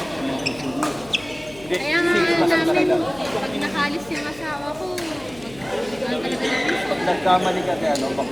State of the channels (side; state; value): left; noise; hum, 21 dB below the sound